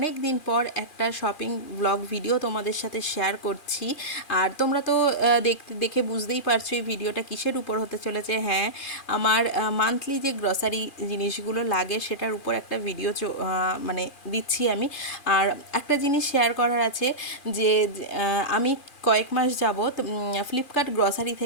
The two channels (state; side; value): late; right; 2.4 ms